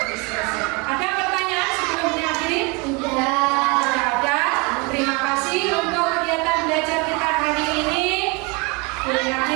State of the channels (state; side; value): quieter; left; 28.0 dB